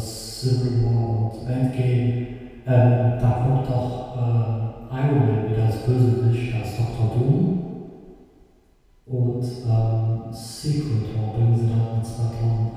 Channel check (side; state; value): both; identical; correlation 1.00